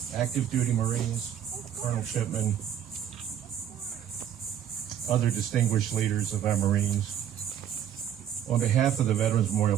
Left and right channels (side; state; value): left; quieter; 9.8 dB